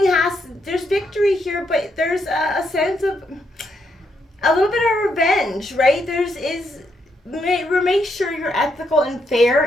there's victory here, but there's a sense of a little bit of revenge, right? Make sure you're ethical and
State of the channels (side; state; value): both; normal; correlation 0.78